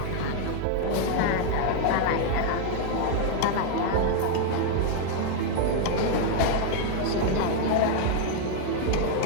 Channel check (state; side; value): different; both; correlation 0.00